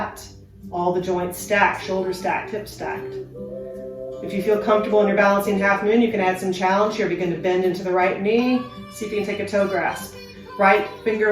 all the joints stacked, shoulders stacked, hips stacked. If you feel comfortable in your balancing half moon, you can add some challenge here. Begin to bend into the right knee. See if you can take a toe grasp. Right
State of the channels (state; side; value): identical; both; correlation 1.00